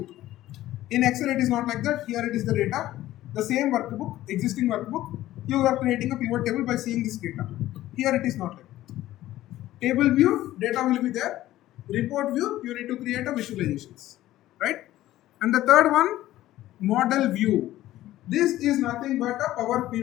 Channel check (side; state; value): right; quieter; 14.8 dB